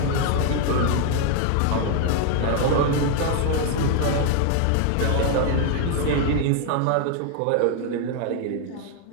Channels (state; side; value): different; both; correlation 0.00